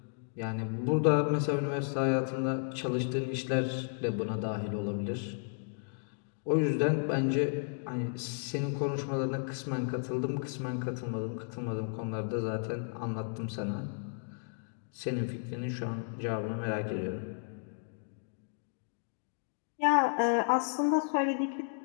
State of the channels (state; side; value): silent; right; digital silence